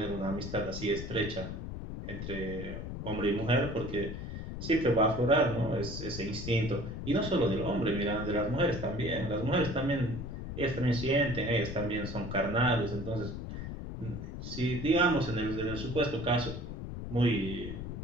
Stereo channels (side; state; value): left; noise; rumble, 7 dB below the sound